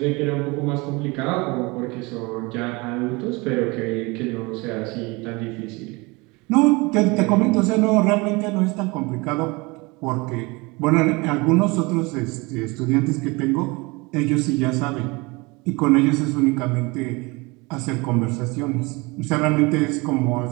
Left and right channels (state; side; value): quieter; left; 25.5 dB